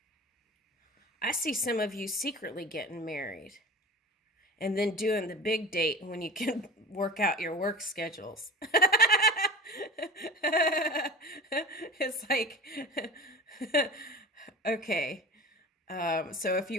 I see some of you secretly getting married and then doing the big date when you can work out your work schedules. It's like, okay. So if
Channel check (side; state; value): both; normal; correlation 0.34